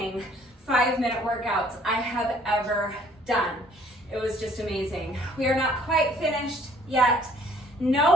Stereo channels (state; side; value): normal; both; correlation 0.59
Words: 5-minute workouts I have ever done. It was just amazing. We are not quite finished yet.